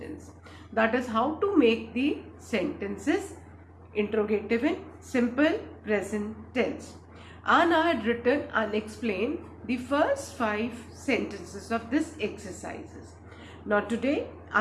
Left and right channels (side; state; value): both; identical; correlation 1.00